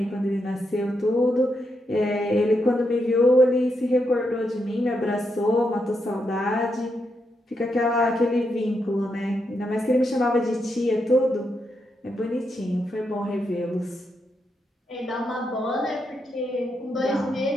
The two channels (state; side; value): normal; both; correlation 0.82